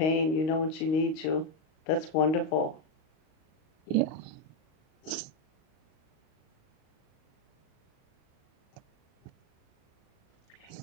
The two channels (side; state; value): right; late; 38 ms